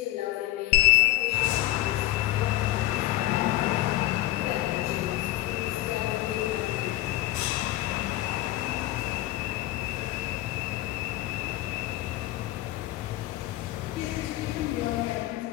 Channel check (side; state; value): right; quieter; 16.6 dB